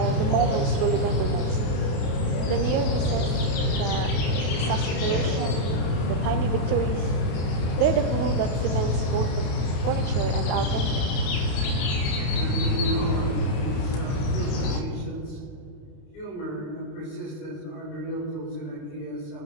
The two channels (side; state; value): right; late; 31 ms